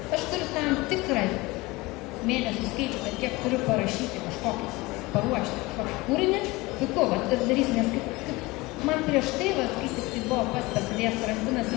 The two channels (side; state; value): right; quieter; 22.1 dB